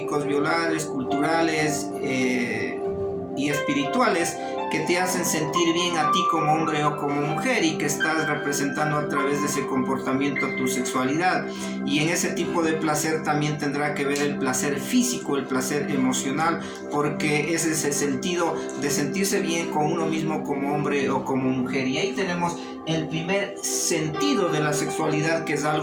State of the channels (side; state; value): both; identical; correlation 1.00